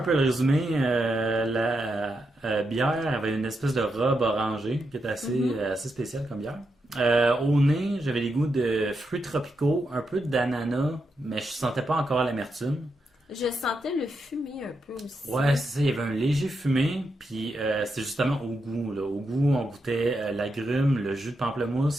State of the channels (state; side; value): normal; both; correlation 0.84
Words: peu le résumé, la bière avait une espèce de robe orangée qui était assez spéciale comme bière. Au nez, j'avais les goûts de fruits tropicaux, un peu d'ananas, mais je sentais pas encore l'amertume. Je sentais le fumé un peu aussi. Ouais, c'est ça, il y avait un léger fumé, puis c'est justement au goût. Là. Au goût, on goûtait l'agrume, le jus de